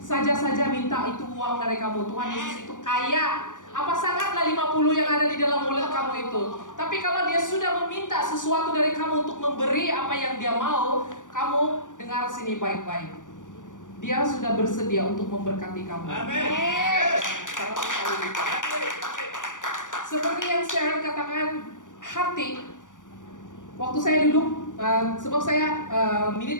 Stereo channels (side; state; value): right; late; 0.87 ms